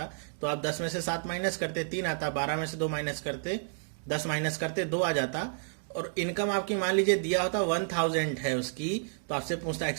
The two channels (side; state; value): left; silent; digital silence